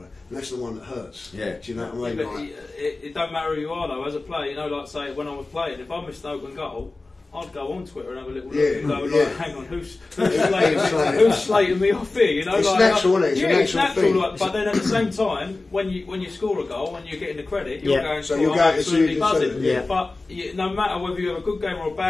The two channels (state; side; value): quieter; right; 3.3 dB